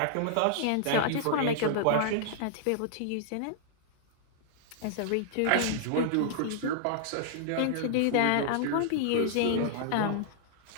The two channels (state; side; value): different; both; correlation -0.01